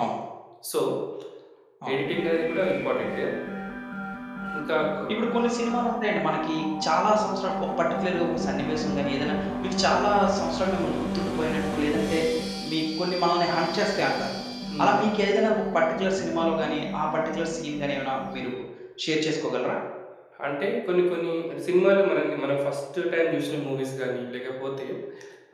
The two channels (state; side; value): identical; both; correlation 1.00